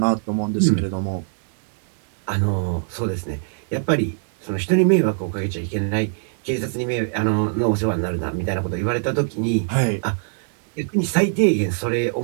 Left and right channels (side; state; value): left; silent; digital silence